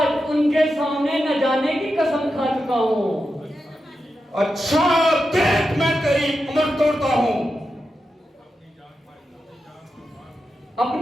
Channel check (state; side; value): normal; both; correlation 0.89